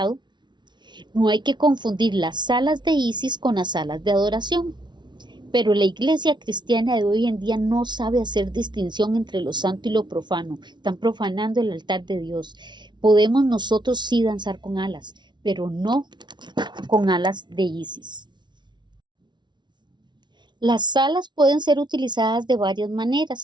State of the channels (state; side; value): late; left; 0.21 ms